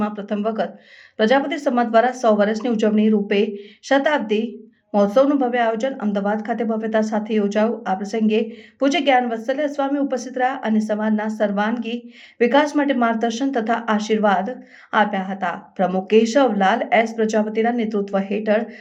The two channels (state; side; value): identical; both; correlation 1.00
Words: પ્રથમ વખત પ્રજાપતિ સમાજ દ્વારા 100 વર્ષની ઉજવણી રૂપે શતાબ્દી મહોત્સવનું ભવ્ય આયોજન અમદાવાદ ખાતે ભવ્યતા સાથે યોજાયું। આ પ્રસંગે પૂજ્ય જ્ઞાન વત્સલ્ય સ્વામી ઉપસ્થિત રહ્યા અને સમાજના સર્વાંગી વિકાસ માટે માર્ગદર્શન તથા આશીર્વાદ આપ્યા હતા। પ્રમુખ કેશવલાલ એસ પ્રજાપતિના નેતૃત્વ હેઠળ